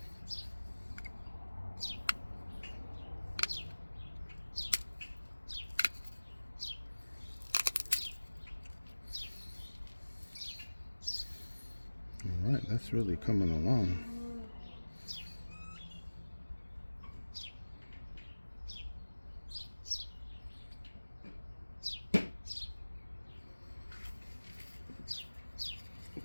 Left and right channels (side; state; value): both; inverted; correlation -1.00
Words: All right, that's really coming along.